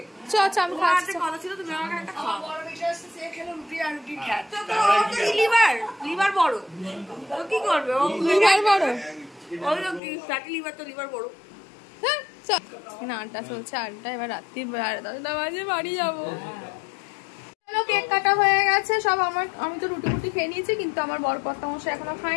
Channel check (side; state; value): right; drops out; at 10.0 s